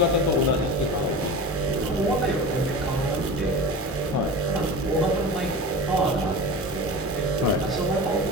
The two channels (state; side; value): normal; both; correlation 0.31